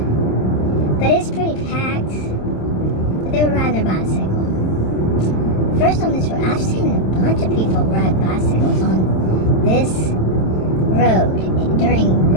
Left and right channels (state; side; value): late; right; 27 ms